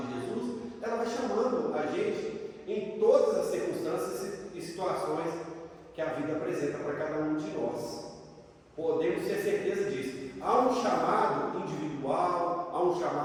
de Jesus, ela vai chamando a gente em todas as circunstâncias e situações que a vida apresenta para cada um de nós. Podemos ter certeza disso. Há um chamado individual, há um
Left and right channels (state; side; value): identical; both; correlation 1.00